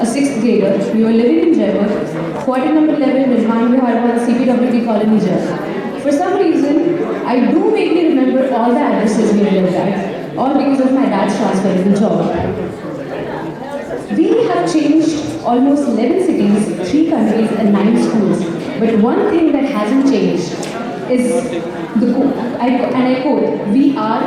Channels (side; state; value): both; identical; correlation 1.00